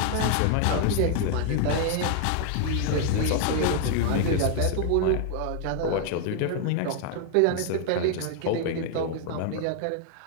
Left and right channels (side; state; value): both; different; correlation 0.00